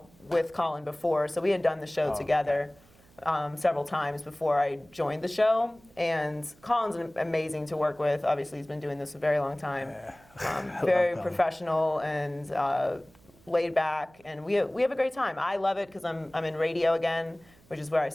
with Colin before. So we had done the show together several times before I joined the show. And Colin's amazing to work with. Obviously, he's been doing this a very long time. Yeah. Very professional and laid back, and we have a great time. I love it because I'm in radio again, which is where I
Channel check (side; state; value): right; noise; hum, 28 dB below the sound